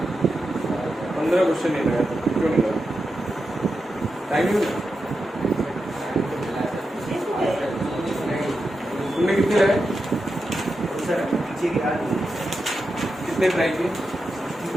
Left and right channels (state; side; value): normal; both; correlation 0.88